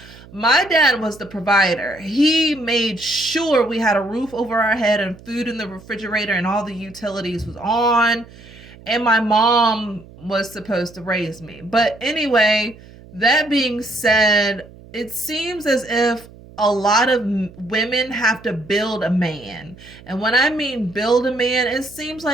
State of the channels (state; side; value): noise; right; hum, 21 dB below the sound